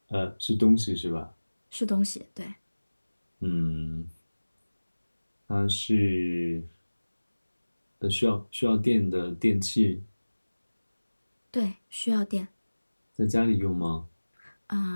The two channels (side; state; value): both; inverted; correlation -1.00